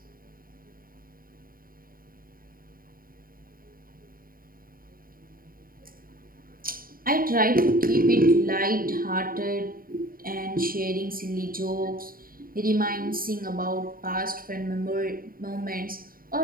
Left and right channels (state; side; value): late; left; 0.42 ms